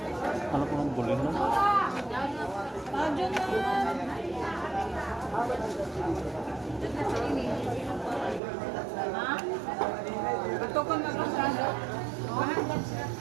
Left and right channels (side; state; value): left; drops out; at 8.4 s